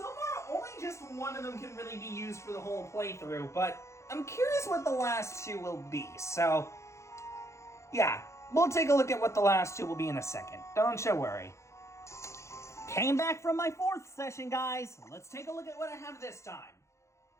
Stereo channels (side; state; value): right; late; 0.14 ms